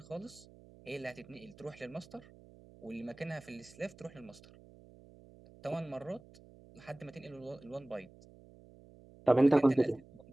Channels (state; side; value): noise; right; hum, 22 dB below the sound